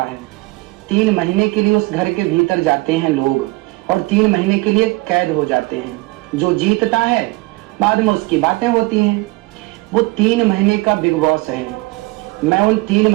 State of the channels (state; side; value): quieter; left; 22.8 dB